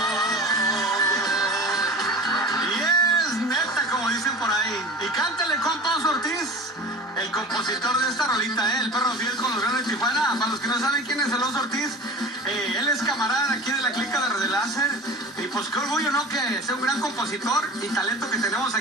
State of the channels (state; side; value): normal; both; correlation 0.36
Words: Y es neta, como dicen por ahí. Y cántale, compa Oso Ortiz, el compositor de esta rolita, el perro fiel con los grandes de Tijuana. Para los que no saben quién es el Oso Ortiz, él es camarada aquí de la clica de Radio Láser. Y pues qué orgullo, ¿no? Que sea un gran compositor y talento que tenemos